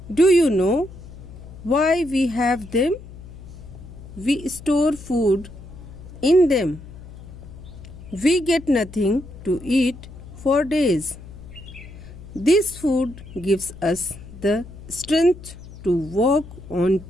do you know why we have them? We store food in them. We get nothing to eat for days. This food gives us the strength to walk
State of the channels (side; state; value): left; noise; hum, 16 dB below the sound